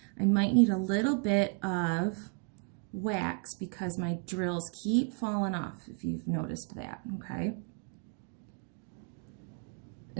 I might need a little bit of wax because my drills keep falling off, if you've noticed that, okay?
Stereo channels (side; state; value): left; quieter; 38.5 dB